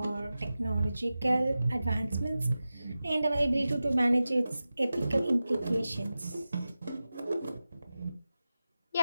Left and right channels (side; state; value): both; inverted; correlation -0.94